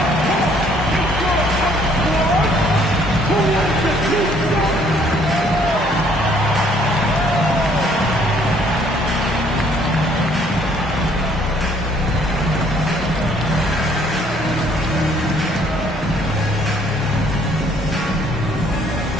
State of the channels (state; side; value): normal; both; correlation 0.62